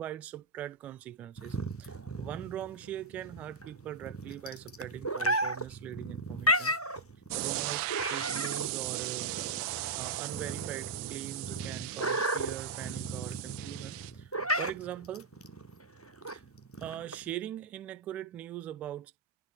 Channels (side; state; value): left; quieter; 3.5 dB